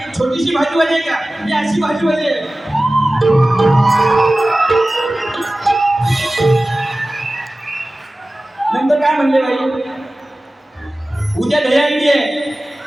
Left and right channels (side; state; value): both; normal; correlation 0.97